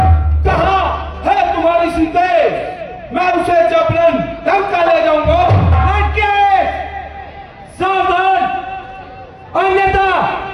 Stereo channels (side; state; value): both; identical; correlation 1.00